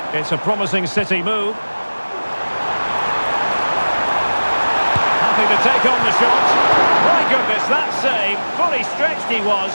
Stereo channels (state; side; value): inverted; both; correlation -1.00